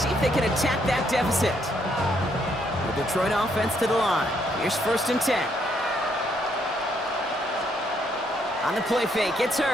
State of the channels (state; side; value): normal; both; correlation 0.72